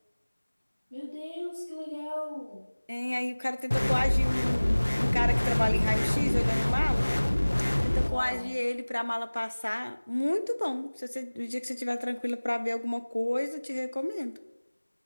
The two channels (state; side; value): inverted; both; correlation -1.00